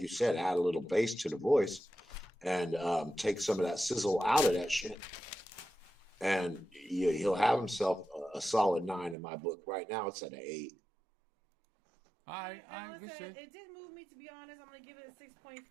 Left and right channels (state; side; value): drops out; left; at 9.2 s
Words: said, add a little bass to the voice, and take some of that sizzle out of that shit, and he'll have himself a solid 9 in my book. Right now, it's at an 8. All right, Alan said it did move me, to be honest. I'm gonna give it a